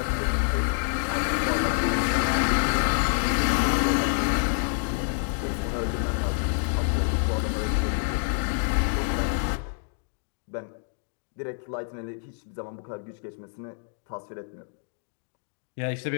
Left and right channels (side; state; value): right; silent; 56 dB below the other